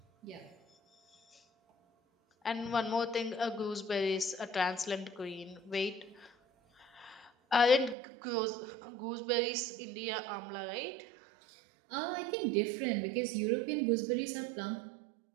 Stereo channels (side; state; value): left; drops out; at 8.0 s